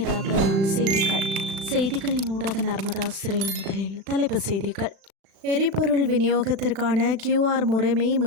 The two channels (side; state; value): left; late; 36 ms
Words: பிரதான செய்திகளின் ஊடாக நர்மதா சிறையில் முதலில் தலைப்புச் செய்திகள். எரிபொருள் விநியோகத்திற்கான QR முறைமை